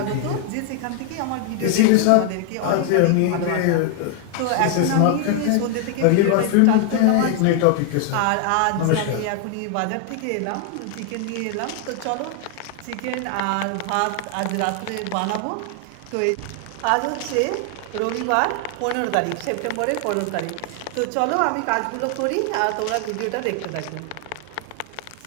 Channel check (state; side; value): different; both; correlation 0.00